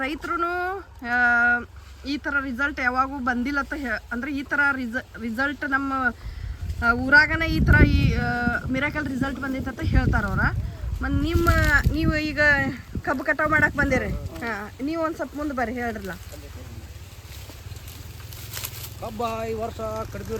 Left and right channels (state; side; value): identical; both; correlation 1.00